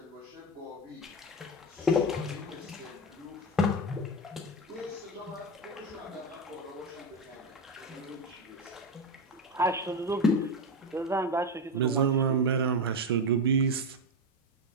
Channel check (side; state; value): both; normal; correlation 0.14